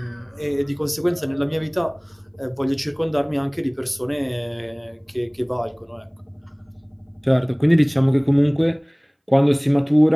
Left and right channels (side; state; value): both; identical; correlation 1.00